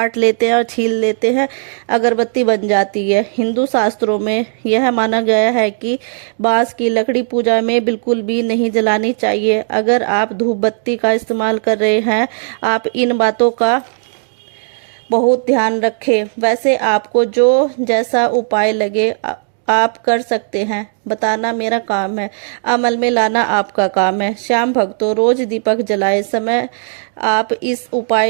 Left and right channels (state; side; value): silent; left; digital silence